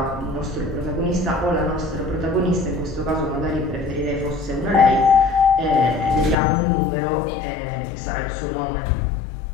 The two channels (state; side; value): drops out; right; at 6.4 s